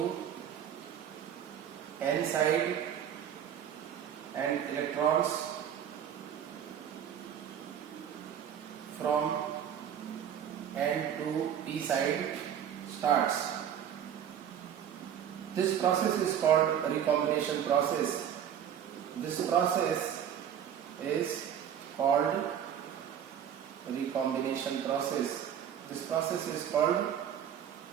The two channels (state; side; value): quieter; left; 9.3 dB